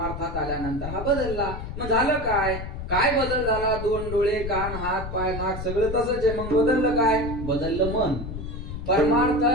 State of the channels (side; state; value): left; noise; rumble, 7 dB below the sound